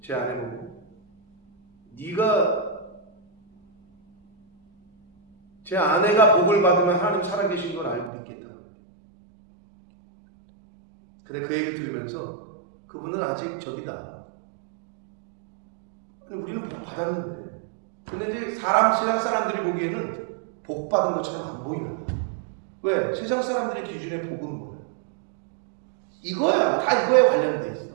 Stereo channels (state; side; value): drops out; left; at 8.1 s